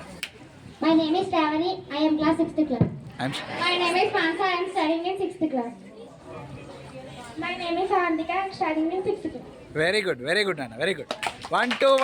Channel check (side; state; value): both; identical; correlation 1.00